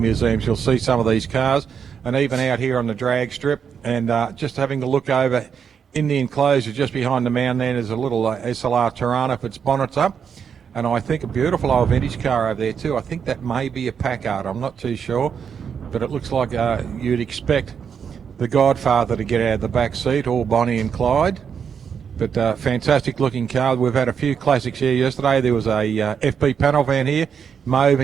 you'll see some of these cars. And even out here on the drag strip, and just having a look over in the enclosure just behind the mound there's a little SLR Tirana with its bonnets up. And I think a beautiful old vintage car over there too. I think that may be a Packard, I'm not too sure. But it looks like you'd expect the Godfather to get out of the back seat, all Bonnie and Clyde. But fantastic looking car. We've had a few classics here yesterday. There was a FP panel van here, mauve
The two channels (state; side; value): quieter; left; 7.2 dB